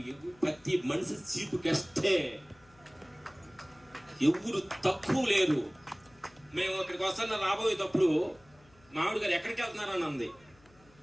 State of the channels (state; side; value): noise; left; hum, 28 dB below the sound